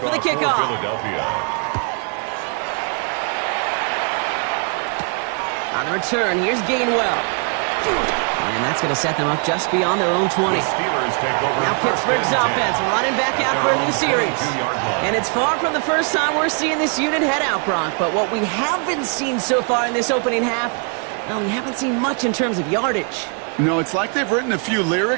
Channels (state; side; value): quieter; left; 39.7 dB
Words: for the kickoff. On the return, here's Gainwell. And that's going to set them up just beyond their own 20. Now Pittsburgh's offense running back out for a new series. And it's far from the first time we're seeing this unit head out, Brock. But what we haven't seen so far in this opening half, well, we haven't seen much in terms of yardage. No, it's like they've written a few